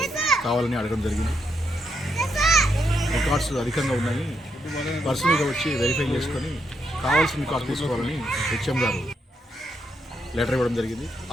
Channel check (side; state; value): both; normal; correlation 0.79